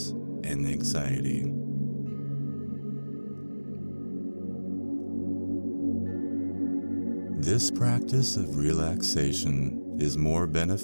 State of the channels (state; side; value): inverted; both; correlation -1.00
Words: and anxiety. This practice of relaxation is more